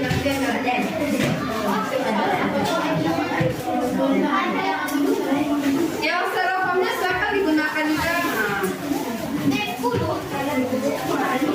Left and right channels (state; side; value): identical; both; correlation 1.00